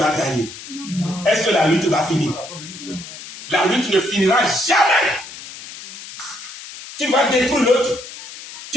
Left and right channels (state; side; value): noise; left; hiss, 14 dB below the sound